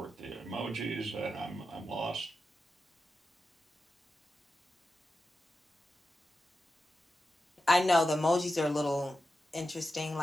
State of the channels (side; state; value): both; normal; correlation 0.90